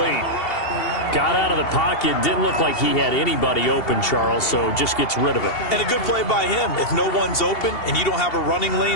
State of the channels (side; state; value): right; late; 2.7 ms